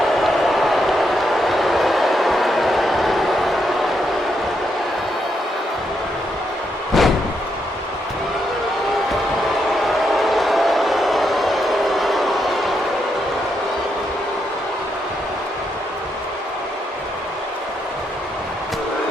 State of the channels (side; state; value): both; normal; correlation 0.80